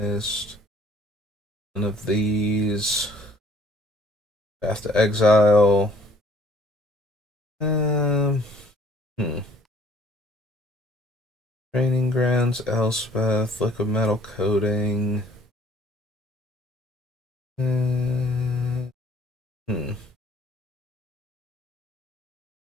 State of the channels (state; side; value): normal; both; correlation 0.58